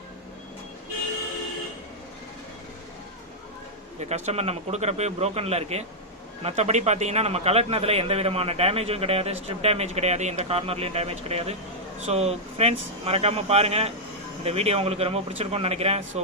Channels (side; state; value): both; normal; correlation -0.06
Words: இந்த கஸ்டமர் நம்ம கொடுக்குறப்பே ப்ரோக்கனில் இருக்குது. மற்றபடி பார்த்தீங்கன்னா நம்ம கலட்டினதில் எந்த விதமான டேமேஜும் கிடையாது, ஸ்ட்ரிப் டேமேஜ் கிடையாது, எந்த கார்னர்லேயும் டேமேஜ் கிடையாது. ஸோ ஃப்ரெண்ட்ஸ் மறக்காமல் பாருங்கள். இந்த வீடியோ உங்களுக்கு ரொம்ப பிடிச்சிருக்கும்னு நினைக்கிறேன். ஸோ